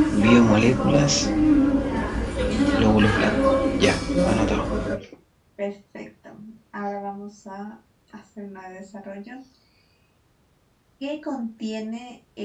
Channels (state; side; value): identical; both; correlation 1.00